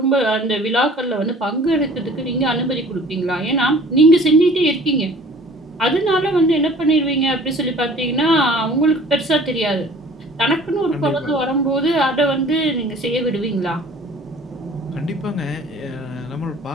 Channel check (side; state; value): both; normal; correlation 0.49